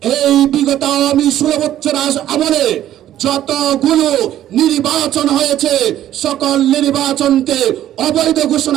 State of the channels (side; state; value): left; quieter; 12.2 dB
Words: এই বিগত আওয়ামী 16 বছর আমলে যতগুলো নির্বাচন হয়েছে সকল নির্বাচনকে অবৈধ